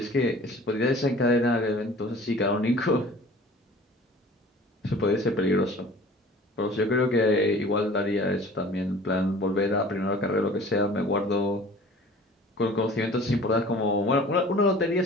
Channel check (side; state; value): both; normal; correlation 0.46